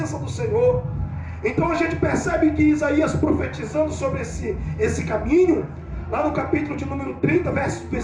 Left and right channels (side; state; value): both; identical; correlation 1.00